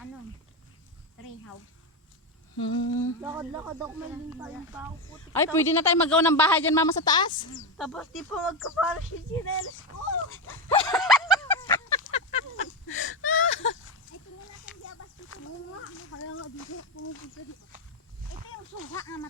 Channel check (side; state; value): both; normal; correlation 0.12